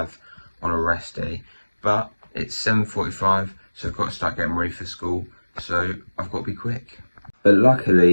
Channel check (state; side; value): inverted; both; correlation -1.00